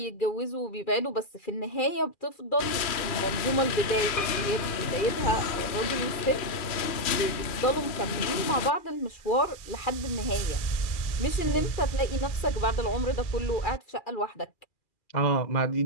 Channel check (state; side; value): late; right; 2.4 ms